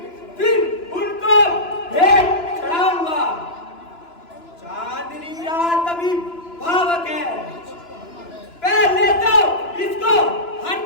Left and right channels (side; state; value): right; late; 2.9 ms